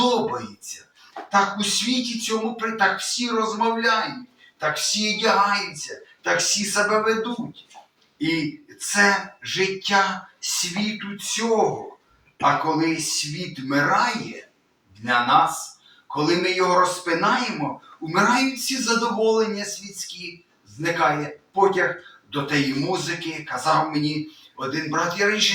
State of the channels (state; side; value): identical; both; correlation 1.00